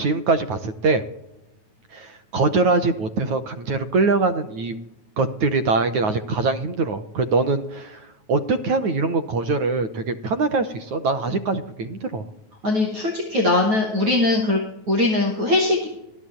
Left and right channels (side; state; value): left; late; 9.3 ms